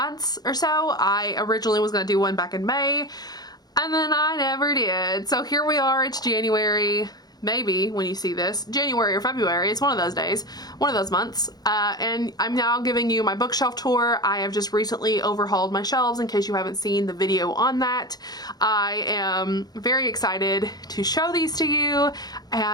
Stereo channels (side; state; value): right; late; 0.19 ms